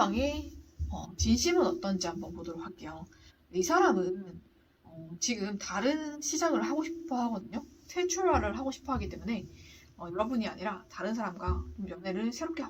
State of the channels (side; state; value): both; identical; correlation 1.00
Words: 진심은 어떤지 한번 보도록 할게요. 이 사람은 지금 다른 시작을 하고 싶어 하거든요. 새 출발을 하고 싶어 하기 때문에 여러분이 아니라 다른 사람과 좀 연애를 새롭게